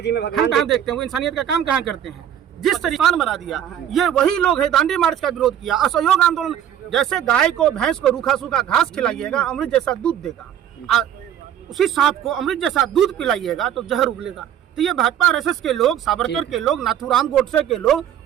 जी में भगवान कहाँ देखते हैं? वो इंसानियत का काम कहाँ करते हैं? जिस तरीके बना दिया, ये वही लोग है। दांडी मार्च का विरोध किया, असहयोग आंदोलन। जैसे गाय को भैंस को रूखा सूखा घास खिलाइएगा, अमृत जैसा दूध देगा। उसी सांप को अमृत जैसा दूध पिलाइएगा तो जहर उगलेगा। तो ये भाजपा आरएसएस के लोग, सावरकर के लोग, नाथूराम गोडसे के लोग,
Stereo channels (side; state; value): left; quieter; 10.1 dB